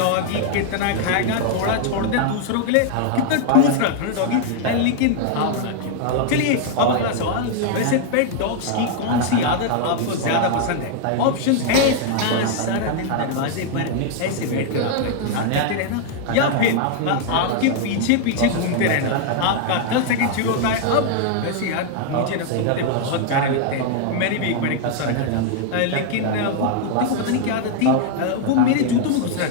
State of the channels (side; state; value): both; different; correlation 0.00